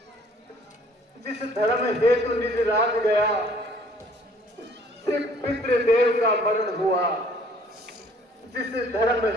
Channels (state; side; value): normal; both; correlation 0.57